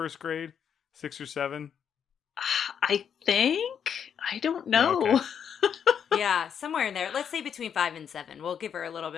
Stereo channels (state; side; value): quieter; right; 7.9 dB